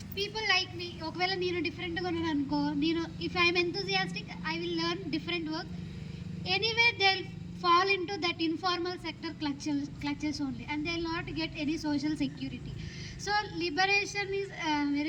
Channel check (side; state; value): both; identical; correlation 1.00